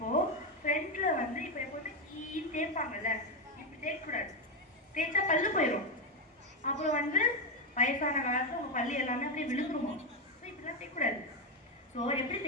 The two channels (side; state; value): both; normal; correlation 0.08